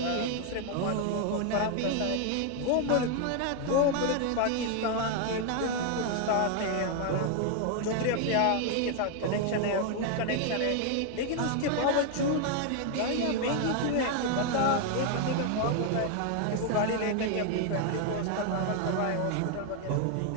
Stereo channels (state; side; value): different; both; correlation 0.00